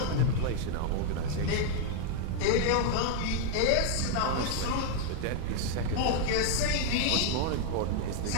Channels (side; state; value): both; different; correlation 0.00